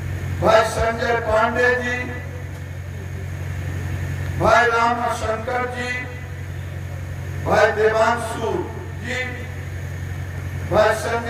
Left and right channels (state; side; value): identical; both; correlation 1.00